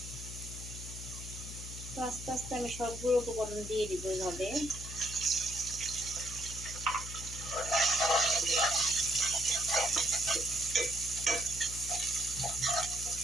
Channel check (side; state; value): left; noise; hum, 10 dB below the sound